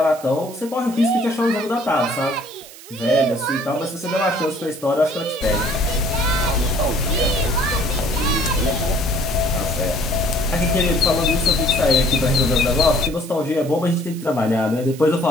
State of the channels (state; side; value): noise; right; hiss, 18 dB below the sound